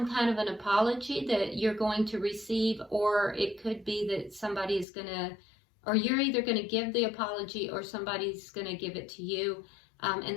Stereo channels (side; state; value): right; drops out; at 4.9 s